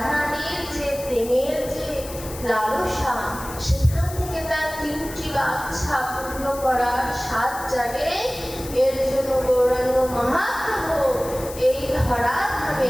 যে প্রেমের যে লালসা, সেখান থেকে তার তিনটি বাঞ্ছা পূর্ণ করার সাত জাগে। এর জন্য গৌরাঙ্গ মহাপ্রভু এই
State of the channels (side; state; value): left; noise; hiss, 13 dB below the sound